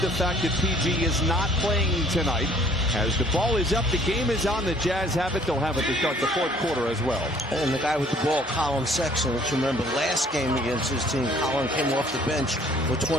the fact that PG is not playing tonight. As the ball is up, the game is on. The Jazz have it. They'll have it to start the fourth quarter as well. And the guy with the ball, Colin Sexton, let's remember last game against his team, Colin came off the bench for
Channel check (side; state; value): both; normal; correlation 0.57